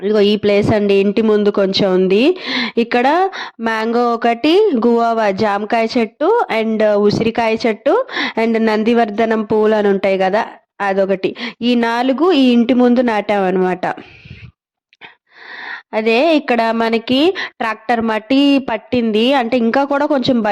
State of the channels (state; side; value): identical; both; correlation 1.00